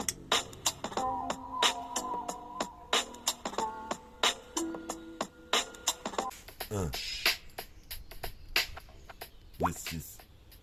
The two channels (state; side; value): identical; both; correlation 1.00